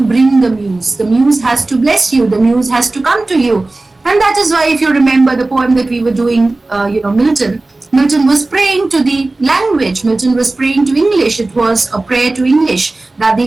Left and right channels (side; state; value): left; quieter; 3.1 dB